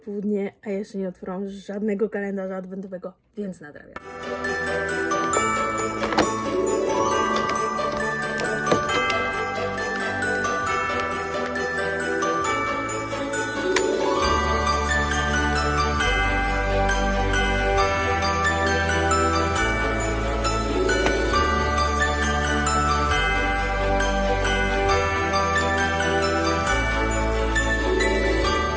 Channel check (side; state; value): both; identical; correlation 1.00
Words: a jeszcze nie otworzyłam żadnego kalendarza adwentowego, więc nadrabiam.